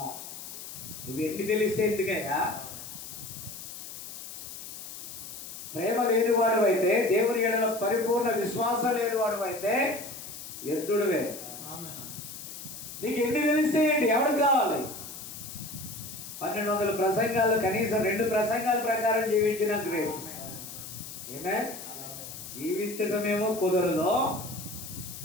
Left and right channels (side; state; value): left; noise; hiss, 11 dB below the sound